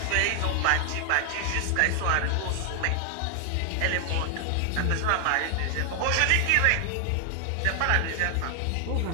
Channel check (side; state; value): both; different; correlation 0.00